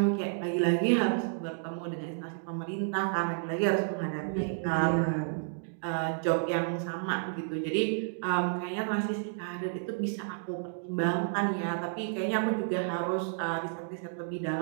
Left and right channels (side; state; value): left; silent; digital silence